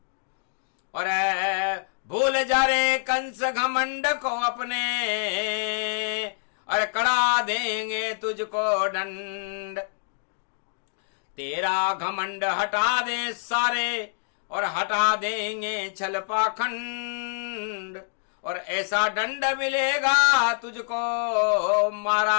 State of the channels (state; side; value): silent; right; digital silence